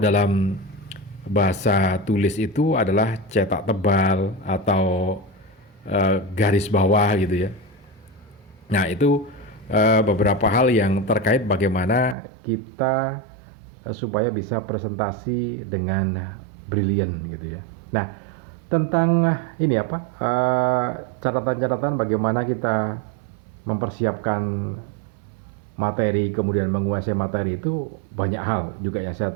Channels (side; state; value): left; drops out; at 12.2 s